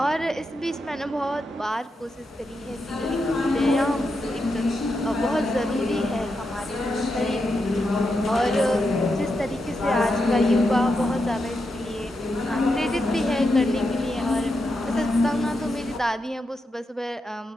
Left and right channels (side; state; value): both; normal; correlation 0.85